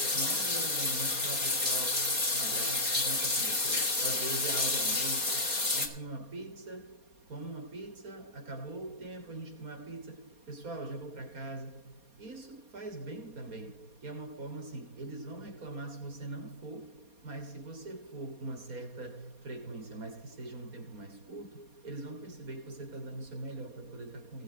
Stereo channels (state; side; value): late; left; 4.2 ms